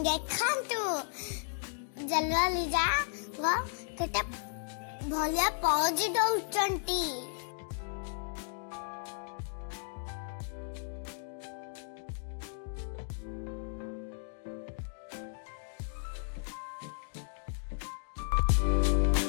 ଦେଖନ୍ତୁ ଜଲୱାଲି ଯାକ କେତେ ଭଳିଆ ପୋଜ୍ ଦଉଛନ୍ତି।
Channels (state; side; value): silent; right; digital silence